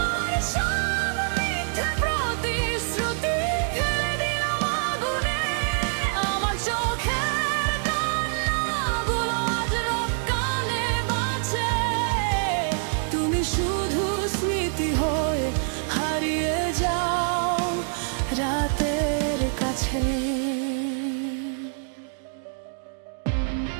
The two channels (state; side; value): silent; left; digital silence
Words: সব মিথ্যে প্রতিশ্রুতি ফেলে দিলাম আগুনে। আমার চোখের কান্নাগুলো আজ রক্কানে বাঁচে। তুমি শুধু স্মৃতি হয়ে হারিয়ে যাও রাতের কাছে।